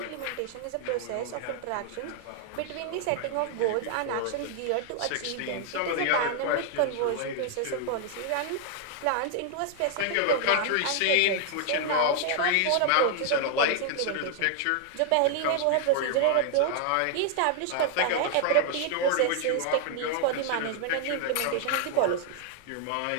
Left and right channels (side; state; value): both; different; correlation 0.00